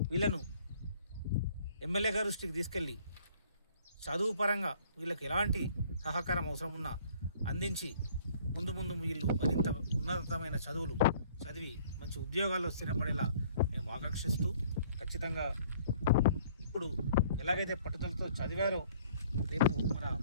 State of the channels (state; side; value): inverted; both; correlation -0.57